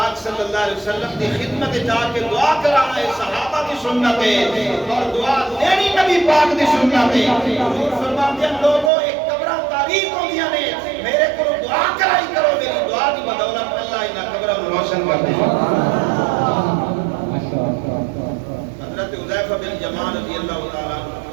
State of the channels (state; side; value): drops out; left; at 8.9 s